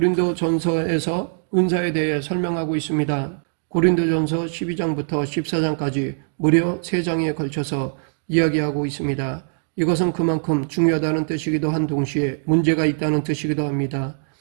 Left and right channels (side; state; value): left; silent; digital silence